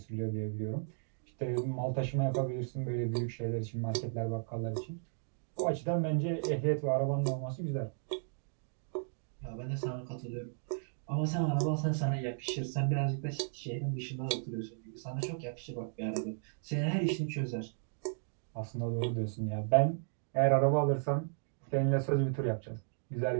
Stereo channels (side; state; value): left; silent; digital silence